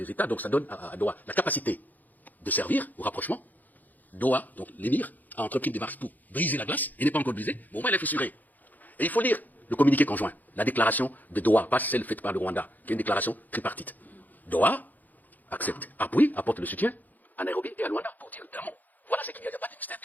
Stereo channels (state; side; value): late; right; 0.083 ms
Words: États, donc ça donne à Doha la capacité de servir au rapprochement. Doha, donc l'émir, a entrepris des démarches pour briser la glace, il n'est pas encore brisé, mais au moins elle est fissurée. Et il faut lire le communiqué conjoint, la déclaration de Doha, pas celle faite par le Rwanda, qui est une déclaration tripartite. Doha accepte, appuie, apporte le soutien à Nairobi et à Luanda pour dire clairement, voilà ce qu'il y a, il n'y a pas de mystère.